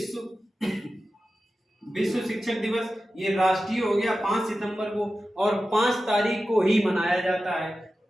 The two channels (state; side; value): normal; both; correlation 0.93